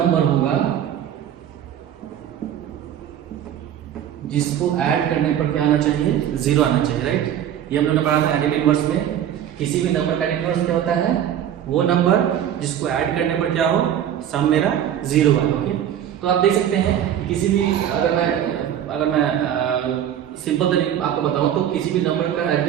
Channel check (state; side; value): quieter; left; 10.2 dB